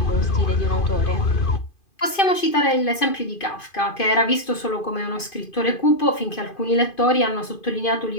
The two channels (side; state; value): right; late; 2.5 ms